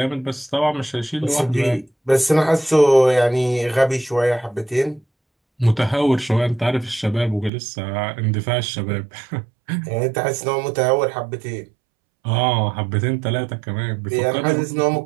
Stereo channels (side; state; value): left; drops out; at 7.5 s